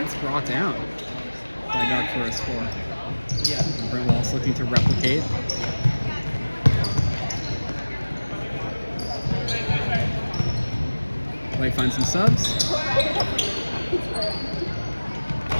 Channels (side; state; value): both; inverted; correlation -1.00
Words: it's brought down by Doug for a score. Yeah. Brent Wallace looking to replicate. Light finds some subs.